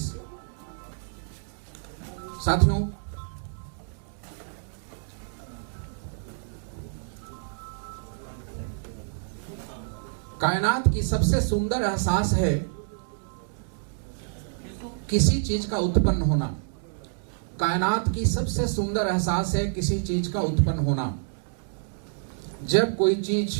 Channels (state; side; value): silent; left; digital silence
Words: साथियों, कायनात की सबसे सुंदर एहसास है किसी चीज का उत्पन्न होना। कायनात की सबसे सुंदर एहसास है किसी चीज का उत्पन्न होना। जब कोई